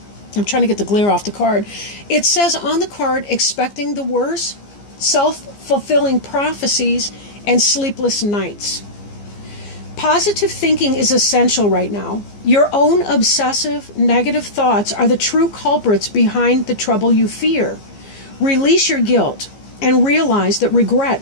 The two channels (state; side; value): late; right; 15 ms